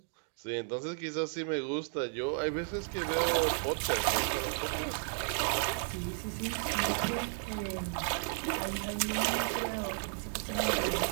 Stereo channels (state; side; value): silent; left; 55 dB below the other